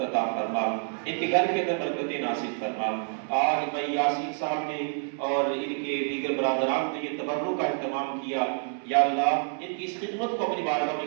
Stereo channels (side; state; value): left; silent; 59 dB below the other